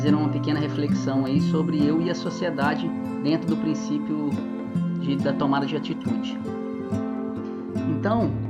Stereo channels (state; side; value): identical; both; correlation 1.00